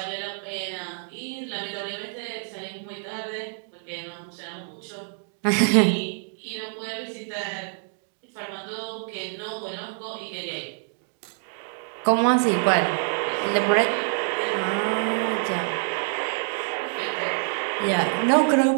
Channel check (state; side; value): silent; left; digital silence